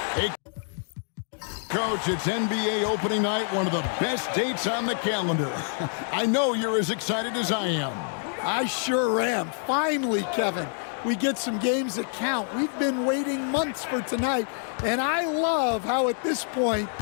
Hey, Coach, it's NBA opening night, one of the best dates on the calendar. I know you're as excited as I am. I sure am. Finally, Kevin, we get some games that count. We've been waiting months for tonight, and I love how at this point,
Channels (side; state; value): right; silent; 60 dB below the other